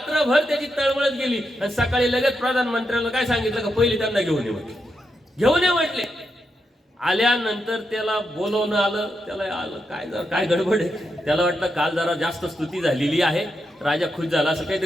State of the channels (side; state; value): both; normal; correlation 0.85